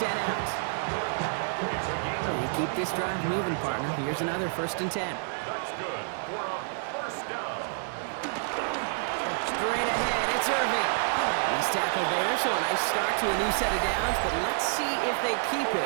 out. You keep this drive moving, partner. Here's another 1st and 10. That's good for a first down. Straight ahead, it's Irving. He's tackled there, so a nice start to a new set of downs, but let's see if they keep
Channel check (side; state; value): left; silent; digital silence